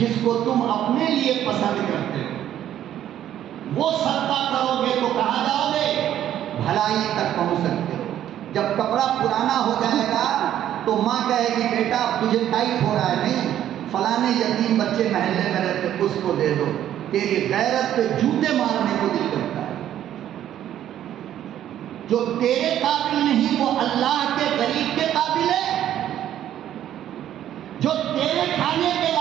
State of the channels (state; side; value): quieter; left; 11.3 dB